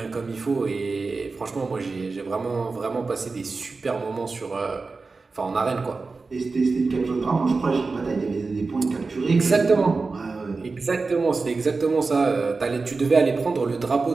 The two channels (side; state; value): left; quieter; 4.0 dB